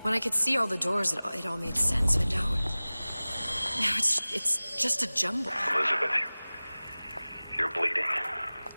When I could see all the doors, it all made sense, but now it's just a jumble. Elizabeth, you're bleeding.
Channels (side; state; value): both; inverted; correlation -0.99